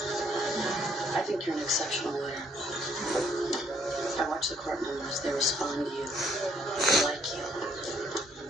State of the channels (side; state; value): both; normal; correlation 0.67